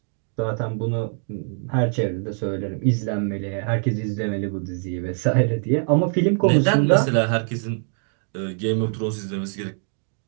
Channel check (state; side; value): silent; left; 57 dB below the other